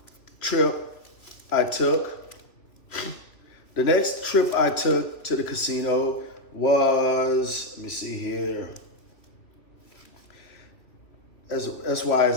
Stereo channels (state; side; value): late; right; 3.1 ms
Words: trip I took, to the casino was, let me see here. That's why